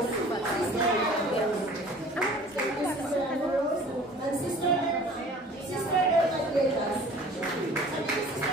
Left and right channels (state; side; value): normal; both; correlation 0.48